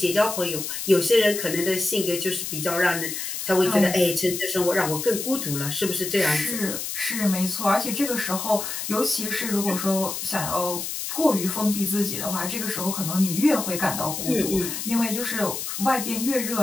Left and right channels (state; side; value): noise; left; hiss, 5 dB below the sound